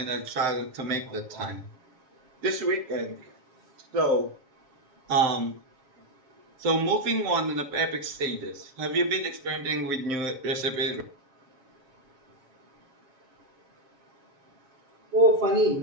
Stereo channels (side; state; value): left; late; 7.1 ms